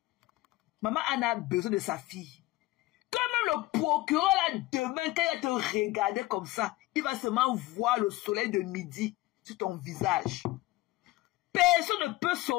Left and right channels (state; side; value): quieter; right; 18.6 dB